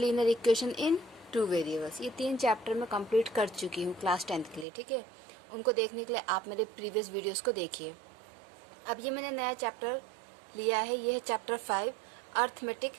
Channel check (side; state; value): left; drops out; at 4.7 s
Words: equation in 2 variables. ये 3 चैप्टर मैं कंप्लीट कर चुकी हूँ क्लास 10th के लिए। ठीक है, उनको देखने के लिए आप मेरे प्रीवियस वीडियोस को देखिए। अब ये मैंने नया चैप्टर लिया है, ये है चैप्टर 5 अर्थमेटिक